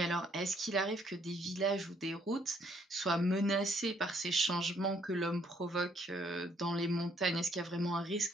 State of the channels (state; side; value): normal; both; correlation 0.67